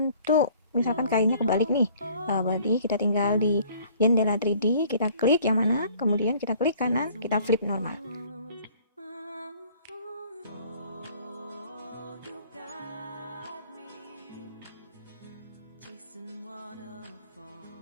misalkan kainnya kebalik nih, berarti kita tinggal di jendela 3D, kita klik yang mana, kemudian kita klik kanan, kita flip normal.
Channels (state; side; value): inverted; both; correlation -0.55